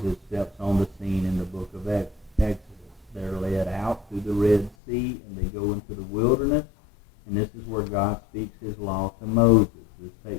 steps on the scene in the book of Exodus. They're led out through the Red Sea, and they go into the wilderness, and this is where God speaks his law to Moses. This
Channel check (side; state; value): right; drops out; at 4.8 s